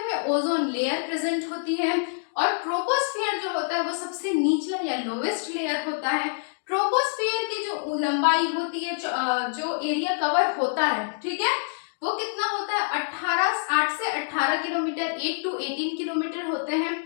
में ओजोन लेयर प्रेजेंट होती है और ट्रोपोस्फियर जो होता है वो सबसे निचला या लोवेस्ट लेयर होता है। ट्रोपोस्फियर की जो लंबाई होती है, जो एरिया कवर होता है, ठीक है, वो कितना होता है? 8 से 18 किलोमीटर, 8 to 18 किलोमीटर होते हैं।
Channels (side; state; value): right; silent; digital silence